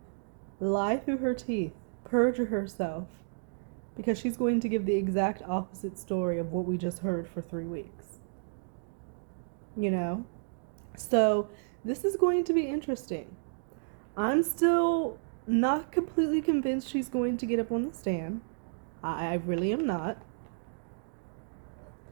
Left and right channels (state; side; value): silent; left; digital silence